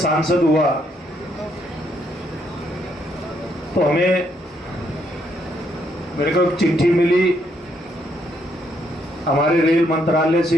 हुआ तो मेरे को एक चिट्ठी मिली हमारे रेल मंत्रालय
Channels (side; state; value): both; normal; correlation 0.73